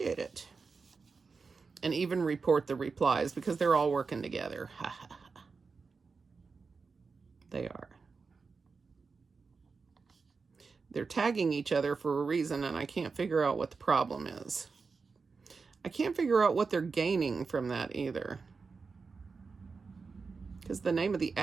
it. And even report the replies, because they're all working together. They are. They're tagging each other for a reason, and I can't figure out what the problem is. I can't figure out what they're gaining from that either. Because the name of the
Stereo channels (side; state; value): left; quieter; 4.7 dB